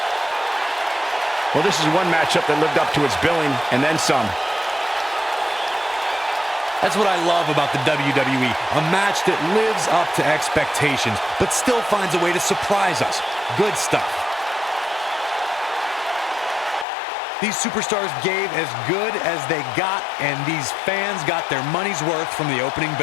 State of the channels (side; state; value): right; drops out; at 16.9 s